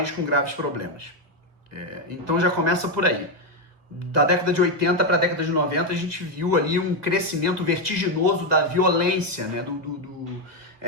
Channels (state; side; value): late; left; 1.8 ms